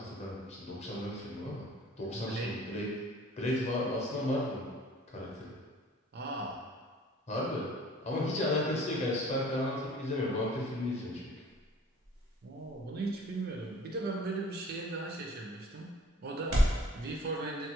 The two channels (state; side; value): normal; both; correlation 0.50